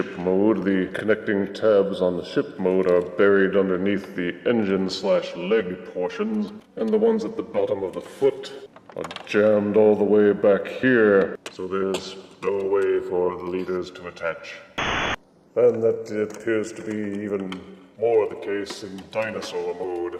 Mode. The connecting tabs on the ship mode are buried underneath the engine/leg portions, and the ones at the bottom of the foot are jammed all the way back here, so there's no way for the leaders to attach. And that appears to be even more the case in Dinosaur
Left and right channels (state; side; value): identical; both; correlation 1.00